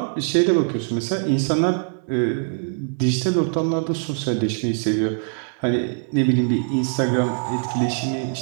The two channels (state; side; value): silent; left; 61 dB below the other